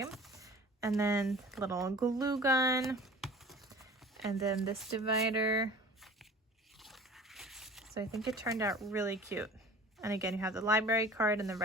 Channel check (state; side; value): normal; both; correlation 0.43